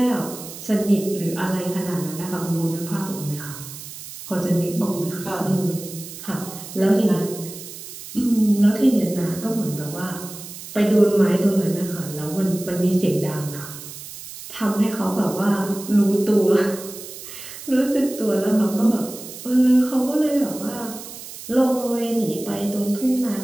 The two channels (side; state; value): right; noise; hiss, 13 dB below the sound